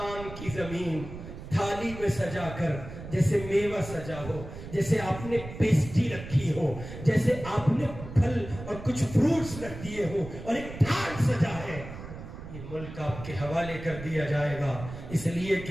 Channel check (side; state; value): right; noise; rumble, 12 dB below the sound